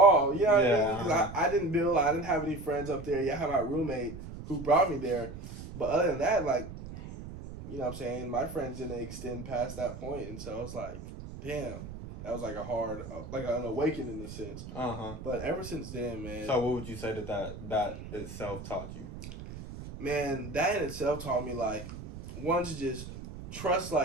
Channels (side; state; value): right; noise; rumble, 11 dB below the sound